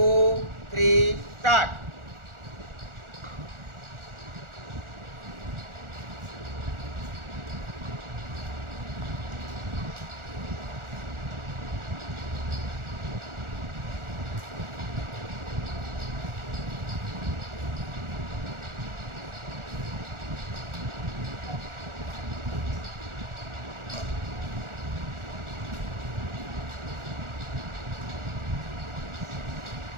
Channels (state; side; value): late; left; 1.4 ms